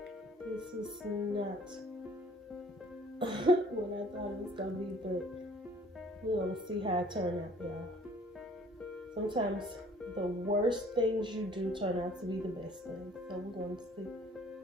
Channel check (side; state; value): both; normal; correlation 0.55